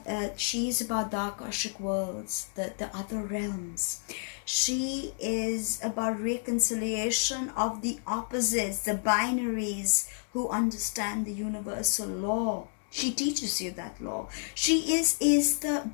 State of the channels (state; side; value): silent; right; 58 dB below the other